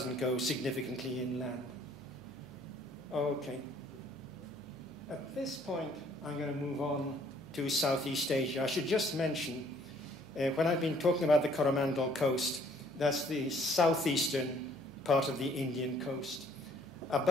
go significantly inland. Okay. At this point, I'm going to move on to Southeast Asia. I should just mention, when I've been talking about the Coromandel coast, that's the southeastern part of the Indian coast.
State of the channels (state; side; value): noise; right; hum, 21 dB below the sound